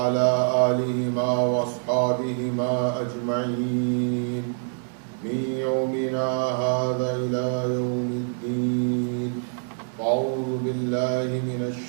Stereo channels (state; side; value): silent; left; digital silence